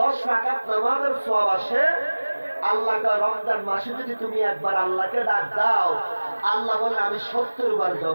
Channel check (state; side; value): inverted; both; correlation -1.00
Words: রাকাত নামাজের সওয়াব আসে। আল্লাহকে রমজান মাসে যদি তুমি একবার আল্লাহকে ডাক দাও, আল্লাহ বলে আমি 70 বার